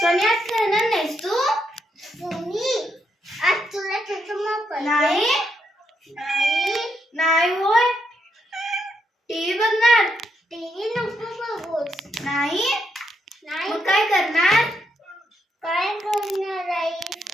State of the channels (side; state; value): both; normal; correlation 0.79